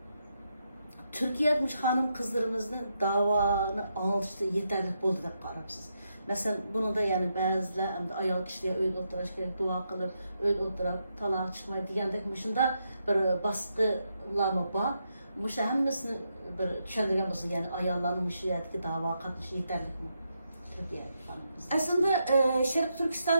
Türkiye'de hanım kızlarımızın davanı anlatışta yeterli oldu da qarabsız. Mesela bunu da yani bazılar hem de ayol kişiye öyle oturaş gerek, dua kılıp öyle oturak talağa çıkmayı diyendek mışında bir baskılar mı var? Mışa hemmesini bir düşündürgen olsun yani ayolların mışıyadaki dava katlışı yeterli mi? Aslında Şarkı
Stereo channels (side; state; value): both; inverted; correlation -0.82